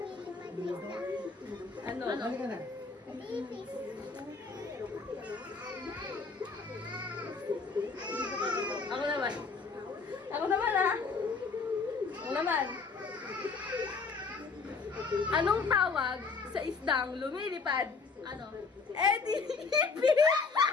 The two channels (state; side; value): quieter; right; 4.6 dB